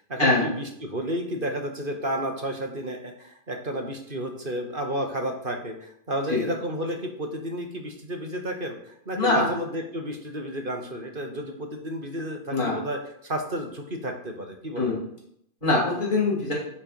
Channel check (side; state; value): left; late; 2.5 ms